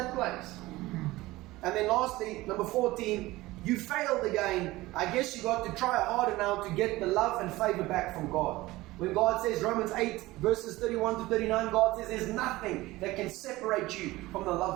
place. And then lastly, number 14, you failed again. I guess you got to try harder now to get the love and favor back from God. When God says, Romans 8 verses 31 to 39, God says there's nothing that can separate you from the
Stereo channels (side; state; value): left; quieter; 18.9 dB